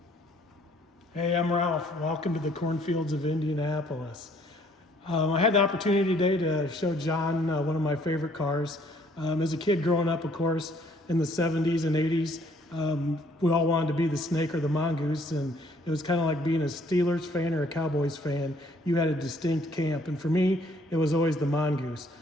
Hey, I'm Ralph. Welcome to the cornfields of Indianapolis. I had the opportunity today to show John one of my favorite cars. As a kid growing up, of course, in the 70s and 80s, we all wanted to be the Snake or the Mongoose, and it was kind of like being a Steelers fan or a Cowboys fan. You had a distinct camp, and for me, it was always the Mongoose.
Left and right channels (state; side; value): normal; both; correlation 0.62